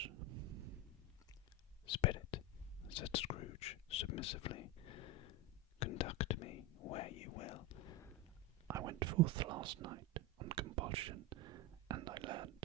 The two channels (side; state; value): both; normal; correlation 0.14